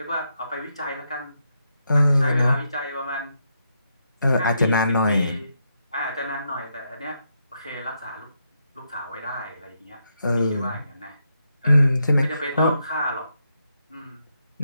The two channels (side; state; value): both; inverted; correlation -0.81